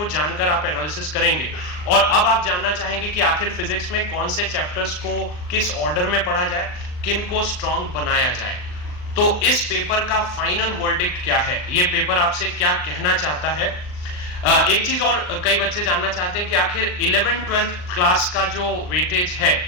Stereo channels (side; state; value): right; late; 39 ms